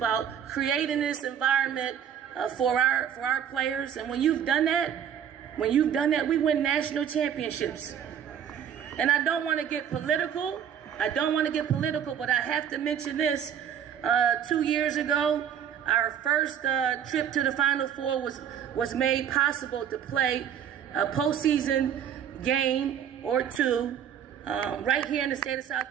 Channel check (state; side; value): quieter; left; 8.9 dB